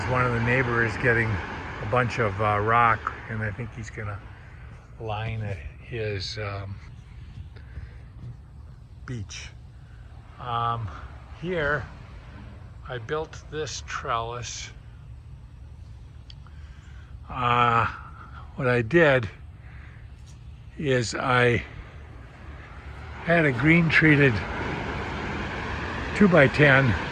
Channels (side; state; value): both; identical; correlation 1.00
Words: one of the neighbors getting a bunch of rock, and I think he's going to line his beach. Here I built this trellis. What I did is I had a green treated 2x10